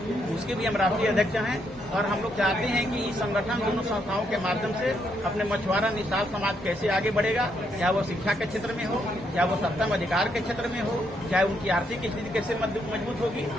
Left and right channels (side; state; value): both; normal; correlation 0.76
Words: उसके भी हम राष्ट्रीय अध्यक्ष हैं। और हम लोग चाहते हैं कि इस संगठन दोनों संस्थाओं के माध्यम से अपने मछुआरा निषाद समाज कैसे आगे बढ़ेगा, चाहे वो शिक्षा के क्षेत्र में हो, चाहे वो सत्ता में अधिकार के क्षेत्र में हो, चाहे उनकी आर्थिक स्थिति कैसे मजबूत होगी।